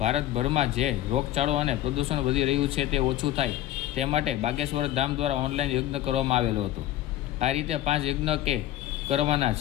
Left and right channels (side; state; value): right; quieter; 13.5 dB